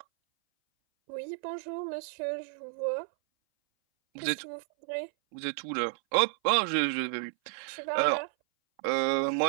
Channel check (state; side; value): silent; left; 57 dB below the other